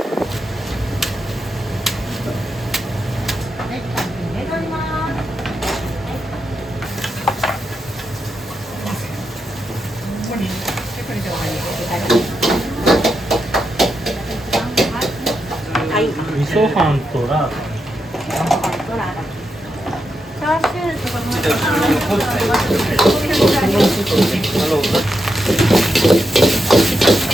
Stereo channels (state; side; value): normal; both; correlation 0.85